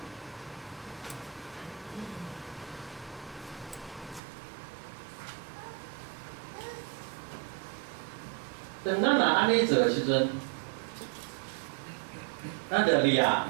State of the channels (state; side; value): drops out; left; at 4.2 s